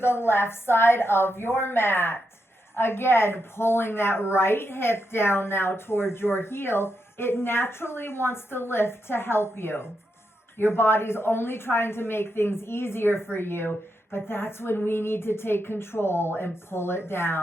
left side of your mat. Again, pulling that right hip down now towards your heel. It naturally wants to lift to help you. Your body's only trying to make things easier for you, but that's when we need to take control and pull it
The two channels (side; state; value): both; normal; correlation 0.84